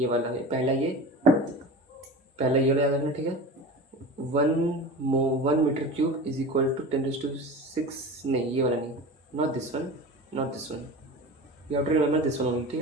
वाला है पहला ये वाला याद रखना, ठीक है। 1 metre cube is equal to 10⁶, नहीं ये वाला नहीं, not this one, you have to remember this one only, ठीक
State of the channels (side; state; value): both; normal; correlation 0.33